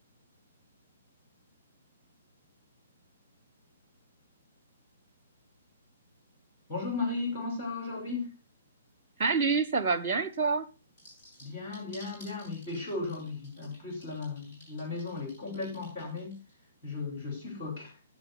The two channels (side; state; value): both; inverted; correlation -0.39